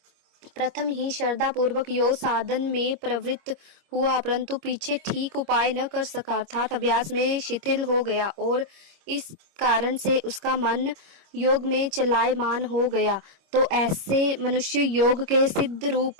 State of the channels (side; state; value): left; late; 26 ms